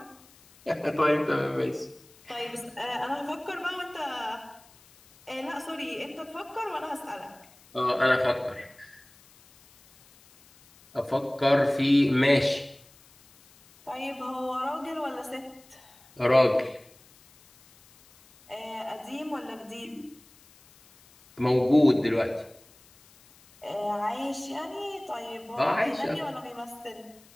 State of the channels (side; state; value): left; noise; hiss, 27 dB below the sound